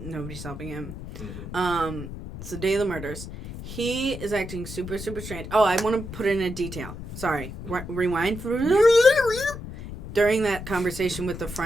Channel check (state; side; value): noise; left; rumble, 10 dB below the sound